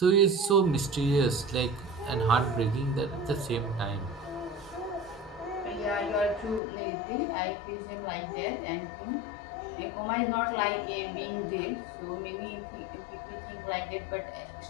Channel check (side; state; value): right; drops out; at 6.6 s